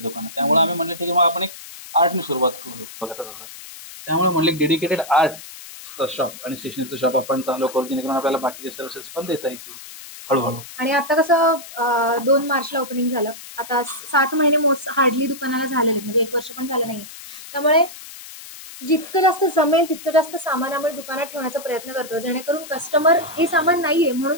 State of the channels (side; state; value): left; noise; hiss, 15 dB below the sound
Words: दुकानं. त्यामुळे आम्ही म्हणलं ठीक आहे, मग आपण एक आर्टने सुरुवात करू बघत असं. त्यामुळे म्हणले डेडिकेटेड आर्टचं शॉप आणि स्टेशनरीचं शॉप आपण चालू करू, जेणेकरून आपल्याला बाकीचे सर्व्हिसेस पण देता येतील हळूहळू. आणि आता कसं 2 मार्चला ओपनिंग झालं, आता 7 महिने हार्डली दुकानाला झाले आहेत, म्हणजे 1 वर्ष पण झालं नाहीये. त्यामुळे जितकं जास्त जमेल तितकं जास्त सामान आम्ही दुकानात ठेवण्याचा प्रयत्न करतो, जेणेकरून कस्टमर हे सामान नाहीये म्हणून